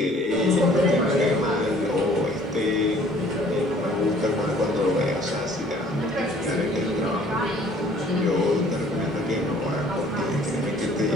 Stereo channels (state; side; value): normal; both; correlation 0.55